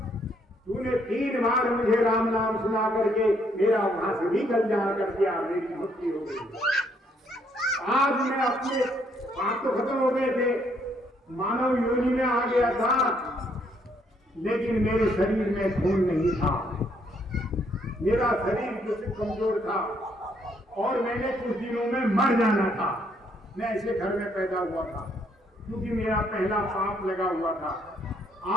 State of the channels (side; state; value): both; normal; correlation 0.70